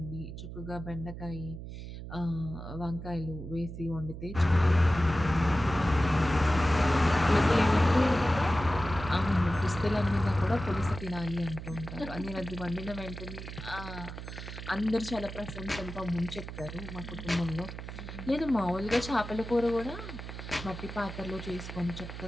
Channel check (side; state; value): right; noise; hum, 10 dB below the sound